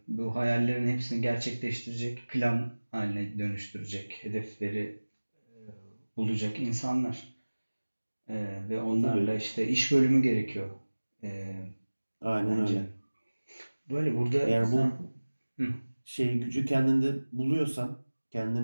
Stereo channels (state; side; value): inverted; both; correlation -1.00